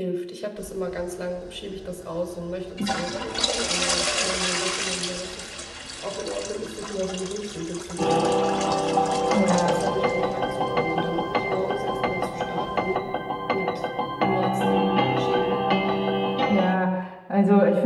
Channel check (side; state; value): both; identical; correlation 1.00